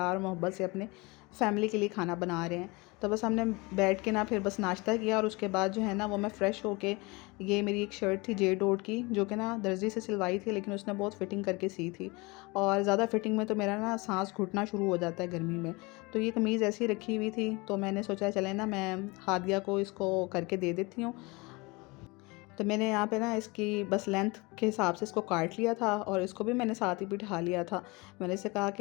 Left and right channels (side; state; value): right; quieter; 25.5 dB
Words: और मोहब्बत से अपने फैमिली के लिए खाना बना रहे हैं। तो बस हमने बैठ के ना फिर बस नाश्ता किया, और उसके बाद जो है ना वो मैं फ़्रेश होके, ये मेरी एक शर्ट थी जे डॉट की, जो कि ना दर्जी से सिलवाई थी, लेकिन उसने बहुत फ़िटिंग करके सी थी, और ज़्यादा फ़िटिंग में तो मेरा ना सांस घुटना शुरू हो जाता है गर्मी में। तो ये कमीज़ ऐसी ही रखी हुई थी, तो मैंने सोचा चले ना मैं हादिया को इसको करके दे देती हूँ। तो मैंने यहाँ पे ना इसकी बस लेंथ के हिसाब से इसको काट लिया था, और इसको भी मैंने साथ ही बिठा लिया था। मैंने इसे कहा